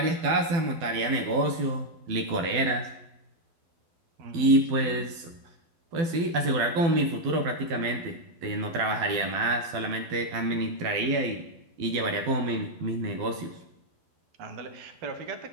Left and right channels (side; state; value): left; late; 12 ms